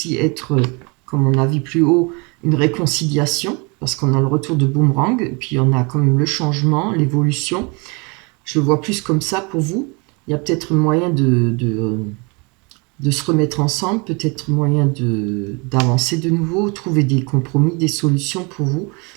être, comme on a vu plus haut, une réconciliation, parce qu'on a le retour de boomerang, et puis on a quand même le changement, l'évolution. Je le vois plus comme ça pour vous. Il y a peut-être moyen de se remettre ensemble, peut-être moyen d'avancer de nouveau, trouver des compromis, des solutions pour vous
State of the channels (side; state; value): left; quieter; 30.6 dB